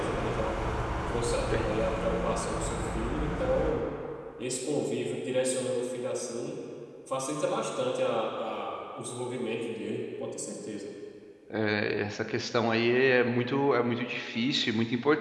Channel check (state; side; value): identical; both; correlation 1.00